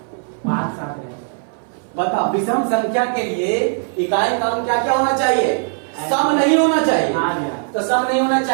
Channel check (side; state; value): left; silent; 59 dB below the other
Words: 5, 7 है। बताओ विषम संख्या के लिए इकाई का अंक क्या क्या होना चाहिए? सम नहीं होना चाहिए। तो सम नहीं होना